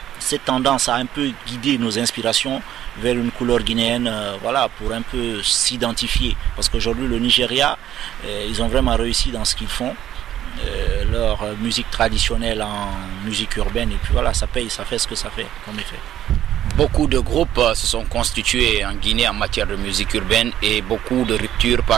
cette tendance à un peu guider nos inspirations vers une couleur guinéenne, voilà, pour un peu s'identifier. Parce qu'aujourd'hui le Nigeria, ils ont vraiment réussi dans ce qu'ils font. Leur musique traditionnelle en musique urbaine, et puis voilà, ça paye, ça fait ce que ça fait comme effet. Beaucoup de groupes se sont constitués en Guinée en matière de musique urbaine et beaucoup de ruptures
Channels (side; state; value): left; quieter; 11.7 dB